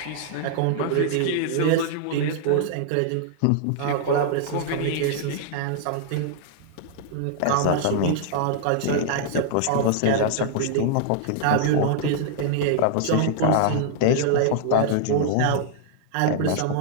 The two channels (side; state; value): both; different; correlation -0.01